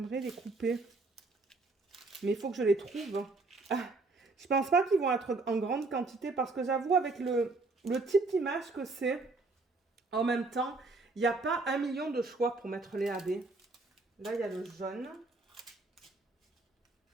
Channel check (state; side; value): quieter; left; 3.5 dB